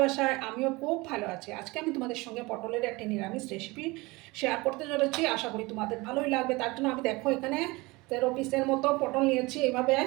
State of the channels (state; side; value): quieter; left; 23.2 dB